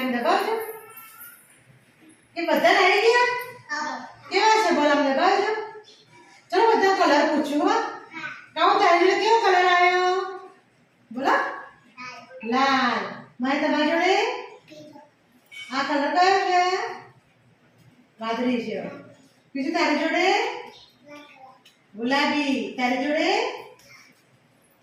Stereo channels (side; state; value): both; identical; correlation 1.00